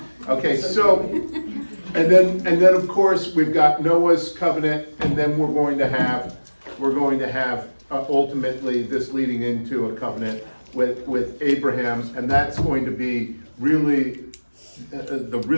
Okay, so, and then of course, we've got Noah's covenant, and then we're going to have ultimately this leading into a covenant with Abraham, and that's going to be really the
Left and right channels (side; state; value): both; inverted; correlation -1.00